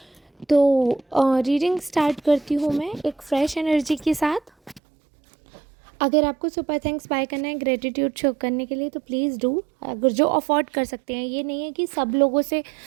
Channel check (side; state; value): left; drops out; at 4.8 s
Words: तो रीडिंग स्टार्ट करती हूँ मैं एक फ़्रेश एनर्जी के साथ। अगर आपको सुपर थैंक्स बाय करना है ग्रेटिट्यूड शो करने के लिए तो प्लीज़ डू। अगर जो अफोर्ड कर सकते हैं, ये नहीं है कि सब लोगों से